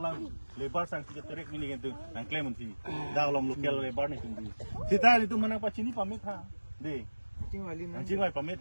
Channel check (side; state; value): both; inverted; correlation -1.00